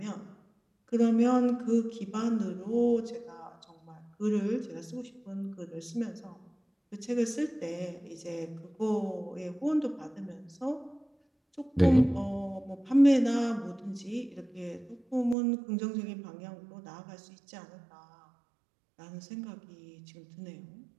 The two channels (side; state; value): left; drops out; at 15.4 s